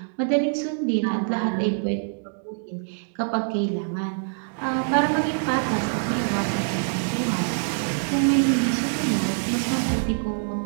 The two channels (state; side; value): silent; left; digital silence